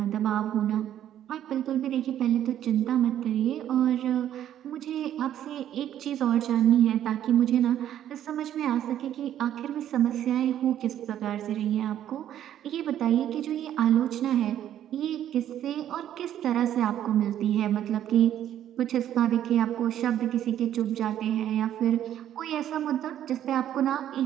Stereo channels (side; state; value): left; quieter; 11.1 dB